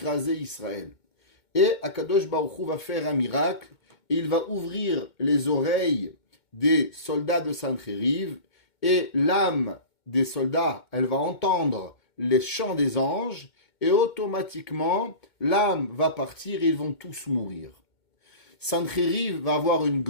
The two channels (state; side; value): late; right; 2.2 ms